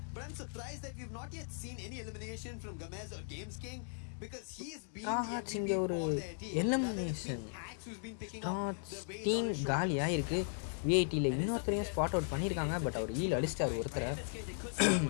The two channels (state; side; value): silent; right; digital silence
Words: But I'm surprised that we've not yet seen any elimination from Gamez or Games King, because he's been the MVP இங்கே ஒரு for their team. Elimination Hacks who's been picking up the weight team on his காலியாக இருக்குது. விஐடியில் இன்னொருத்தரையும் spot out பண்ணியிருக்காங்க. பட் அவர் ஈல் அடிச்சிட்டார் ஒருத்தரை.